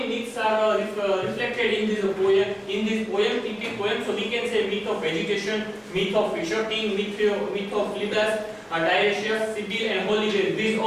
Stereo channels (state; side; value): identical; both; correlation 1.00